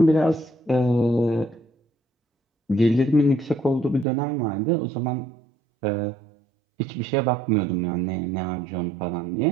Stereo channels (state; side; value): drops out; left; at 4.0 s